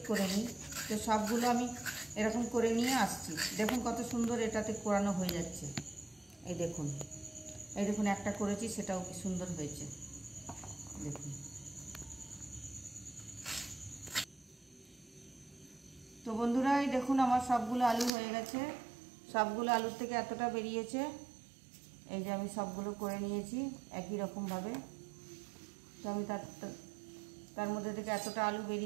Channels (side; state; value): left; drops out; at 18.1 s